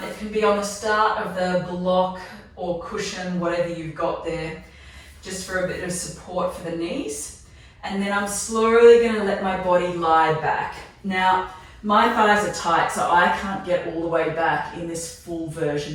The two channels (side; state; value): both; identical; correlation 1.00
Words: It can be on the start of the block or cushion, whatever you've got there, just for a bit of support for the knees. And then I'm slowly going to let my body lie back. Now, my thighs are tight, so I can't get all the way back in this full version